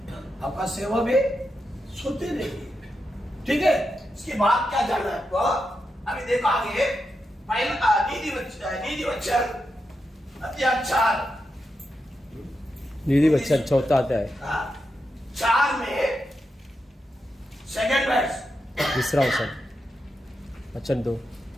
आपका सेवा भी सोते रहेगी। ठीक है, इसके बाद क्या जाना है आपको, अभी देखो आगे पहला नीति वचन अध्याय 4 नीति वचन 4 अध्याय 4 में सेकंड वर्स, तीसरा वचन 2,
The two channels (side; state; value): both; normal; correlation 0.87